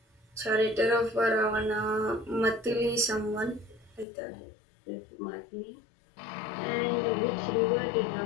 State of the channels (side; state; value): right; drops out; at 4.0 s